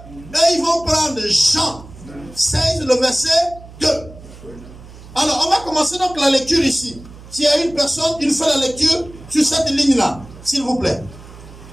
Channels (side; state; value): right; noise; hum, 18 dB below the sound